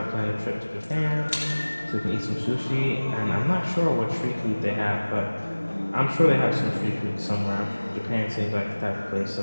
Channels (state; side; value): inverted; both; correlation -1.00